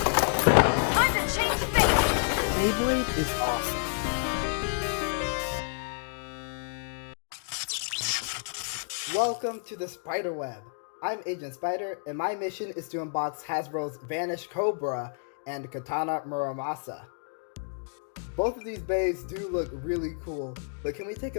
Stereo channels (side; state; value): right; silent; digital silence